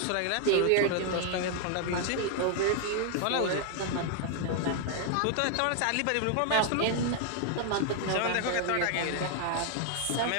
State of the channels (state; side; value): different; both; correlation 0.00